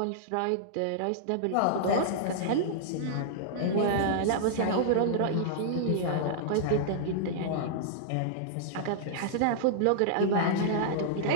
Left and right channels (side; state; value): both; different; correlation -0.01